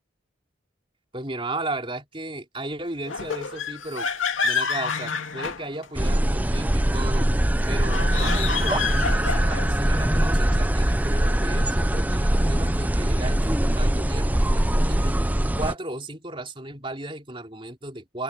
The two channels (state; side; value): normal; both; correlation 0.83